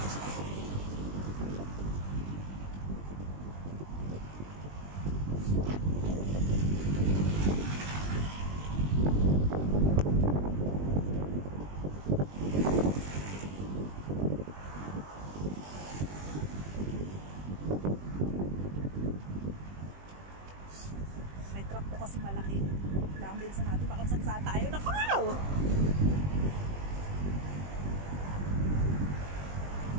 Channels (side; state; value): left; late; 20 ms